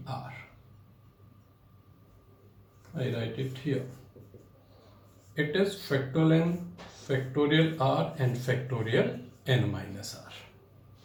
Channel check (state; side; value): identical; both; correlation 1.00